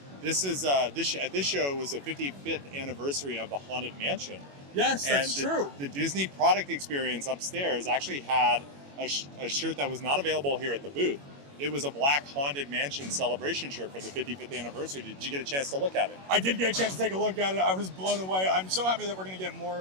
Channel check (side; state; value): left; late; 21 ms